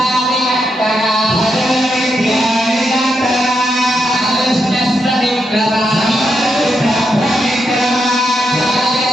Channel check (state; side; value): normal; both; correlation 0.82